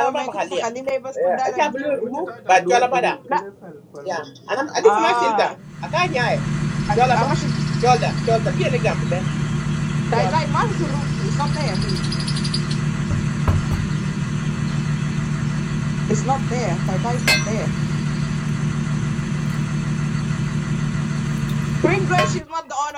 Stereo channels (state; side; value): identical; both; correlation 1.00